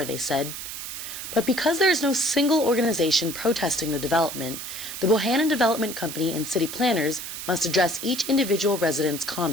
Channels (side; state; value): right; noise; hiss, 8 dB below the sound